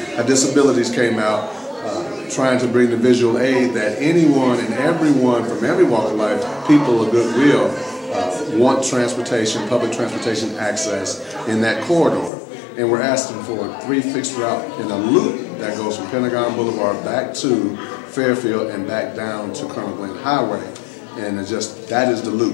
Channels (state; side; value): drops out; right; at 12.3 s